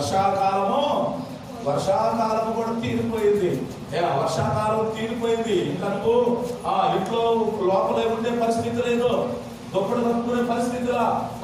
కూడా తీరిపోయింది. వర్షాకాలం తీరిపోయింది. ఇంకా నువ్వు ఇంట్లో లోపలే ఉండే పరిస్థితి లేదు, దుప్పటి కప్పుకునే పరిస్థితిలా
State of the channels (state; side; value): identical; both; correlation 1.00